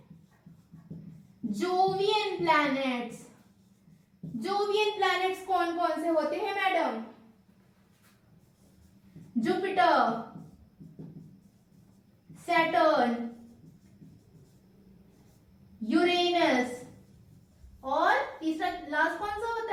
Jovian planets. जोवियन प्लैनेट्स कौन कौन से होते हैं मैडम? जुपिटर, सैटर्न, यूरेनस और तीसरा लास्ट कौन सा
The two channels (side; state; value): both; identical; correlation 1.00